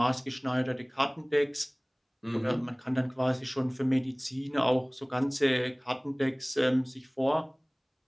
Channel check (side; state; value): both; identical; correlation 1.00